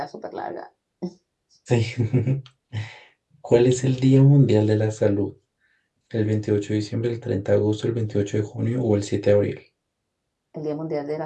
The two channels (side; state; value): both; identical; correlation 1.00